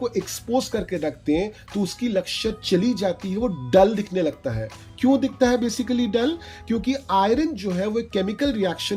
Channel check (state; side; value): identical; both; correlation 1.00